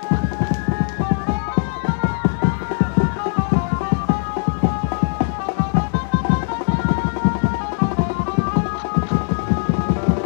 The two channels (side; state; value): right; silent; digital silence